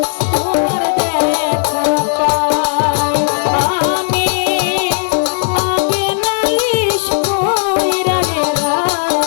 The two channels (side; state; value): right; silent; digital silence